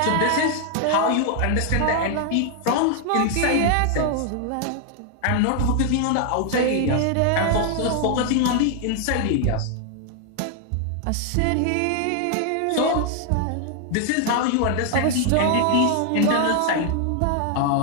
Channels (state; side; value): different; both; correlation 0.00